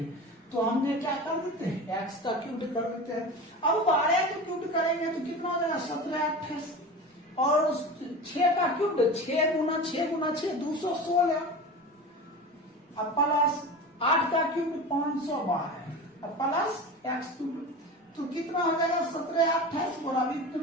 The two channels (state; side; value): normal; both; correlation 0.31